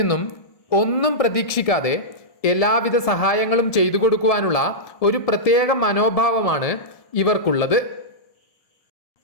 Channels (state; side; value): late; right; 1.7 ms